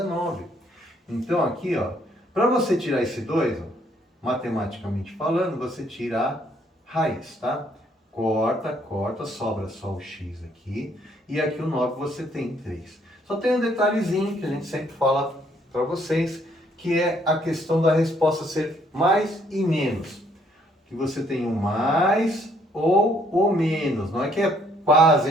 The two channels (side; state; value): both; normal; correlation 0.66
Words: 9. Então, aqui, ó, para você tirar esse 2, ó, matematicamente falando, você tira a raiz, tá? Corta, sobra só o x aqui, e aqui o 9 você tem 3. Só tem um detalhezinho que a gente sempre fala para vocês, que é a questão da resposta ser mais e menos. Que você tem o mais ou o menos. Não é que é